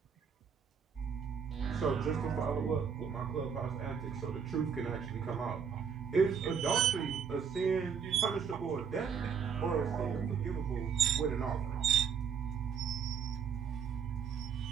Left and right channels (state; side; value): quieter; left; 6.8 dB